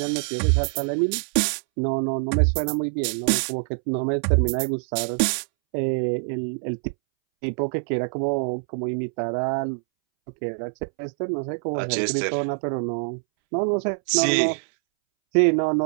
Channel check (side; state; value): left; silent; 62 dB below the other